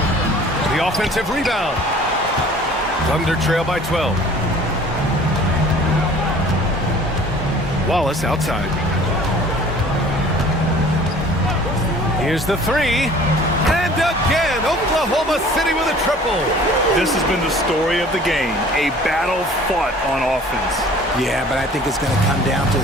The offensive rebound. Thunder trail by 12. Wallace outside. Here's the 3. And again, Oklahoma City with a triple. This has been the story of the game. A battle fought on offense. Yeah, but I think it's going to come down to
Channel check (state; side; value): normal; both; correlation 0.49